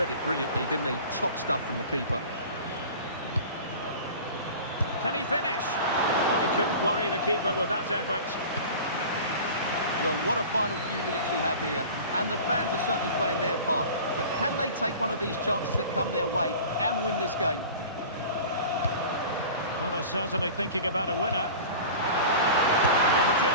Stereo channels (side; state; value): both; inverted; correlation -0.38